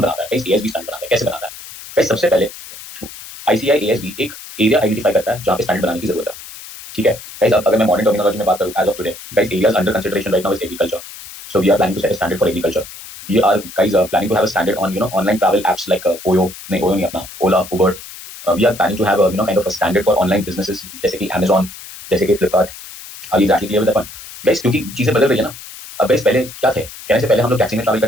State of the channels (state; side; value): noise; left; hiss, 15 dB below the sound